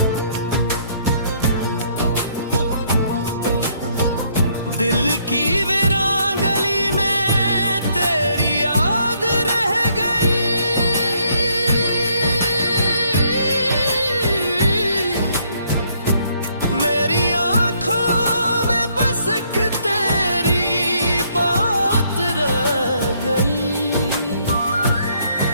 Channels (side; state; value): both; inverted; correlation -0.68